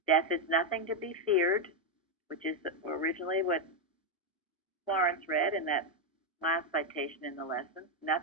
Death is nothing to be feared, which is originally what Florence read in that last citation in the lesson.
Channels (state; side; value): normal; both; correlation 0.03